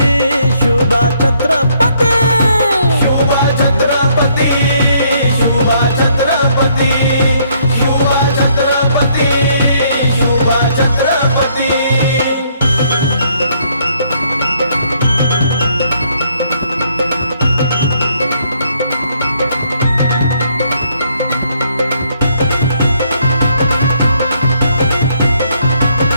शुभा छत्रपती, शुभा छत्रपती, शुभा छत्रपती, शुभा छत्रपती, शुभा छत्रपती।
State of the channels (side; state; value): both; inverted; correlation -0.68